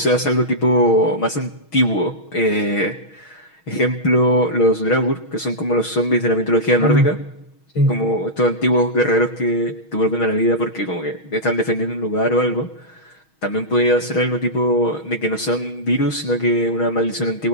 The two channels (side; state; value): right; late; 6.3 ms